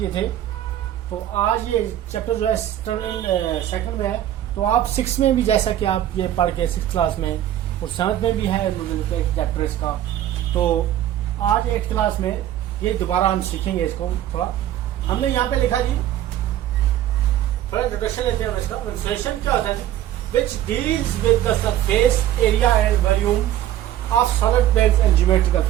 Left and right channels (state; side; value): quieter; left; 12.3 dB